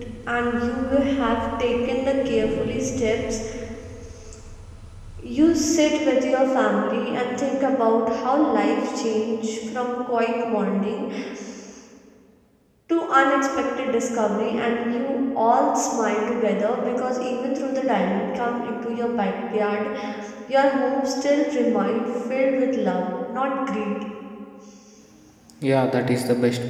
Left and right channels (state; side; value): identical; both; correlation 1.00